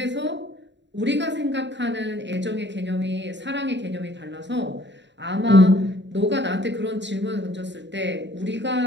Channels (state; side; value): late; left; 0.52 ms